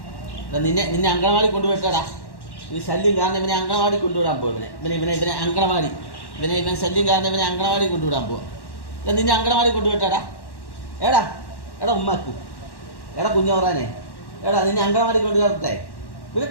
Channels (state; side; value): late; right; 1.1 ms